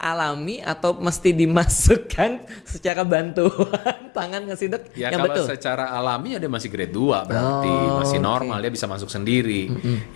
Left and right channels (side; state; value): right; drops out; at 2.9 s